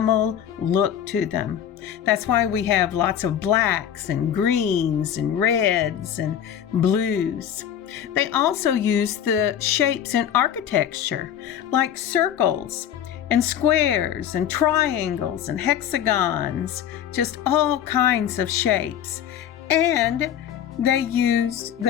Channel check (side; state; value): right; quieter; 9.8 dB